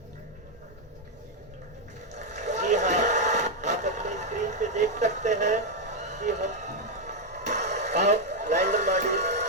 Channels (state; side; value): normal; both; correlation 0.01